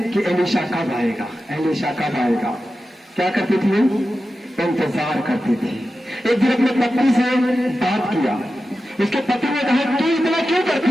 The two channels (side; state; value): both; normal; correlation 0.92